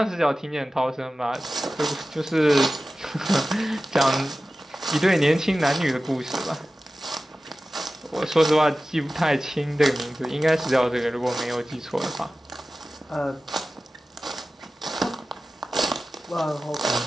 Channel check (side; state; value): both; normal; correlation 0.96